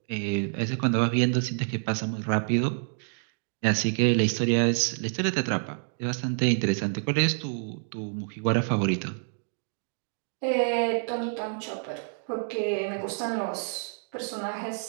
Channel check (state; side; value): silent; left; 59 dB below the other